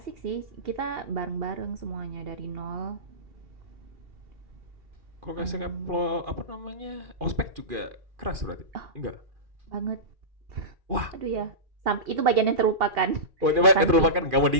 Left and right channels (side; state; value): left; late; 2.4 ms